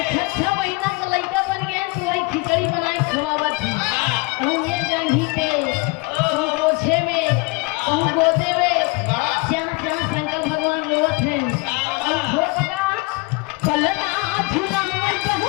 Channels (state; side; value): quieter; right; 25.9 dB